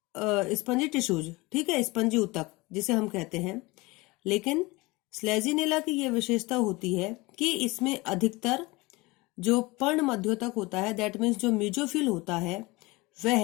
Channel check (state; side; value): quieter; right; 23.1 dB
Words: tissues. ठीक है, स्पंजी ऊतक जिसे हम कहते हैं। लेकिन स्लेजिनेला की यह विशेषता होती है कि इसमें अधिकतर जो पर्ण मध्योतक होता है, दैट मीन्स जो मीजोफिल होता है,